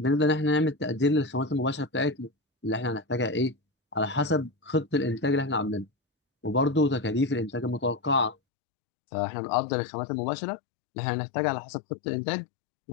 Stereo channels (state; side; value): drops out; right; at 8.3 s